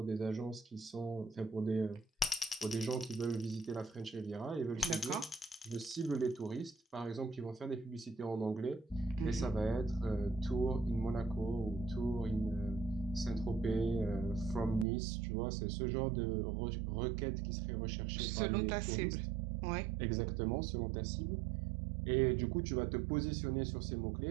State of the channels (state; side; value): drops out; left; at 14.9 s